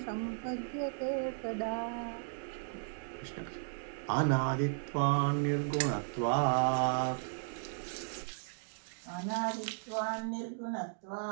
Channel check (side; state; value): left; silent; digital silence